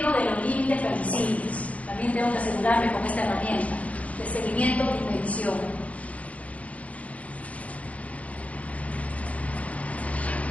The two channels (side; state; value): right; late; 0.066 ms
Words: de los límites permisibles. También tengo que asegurarme con esta herramienta de seguimiento y medición.